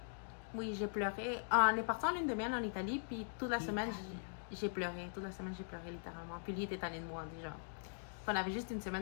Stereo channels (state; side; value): silent; right; digital silence